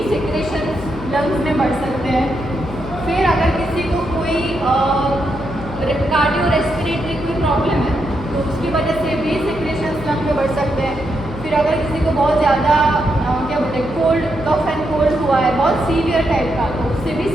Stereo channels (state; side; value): noise; left; hum, 12 dB below the sound